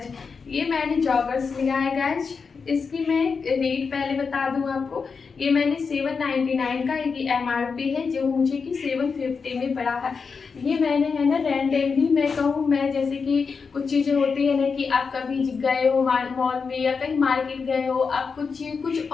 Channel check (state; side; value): quieter; right; 5.3 dB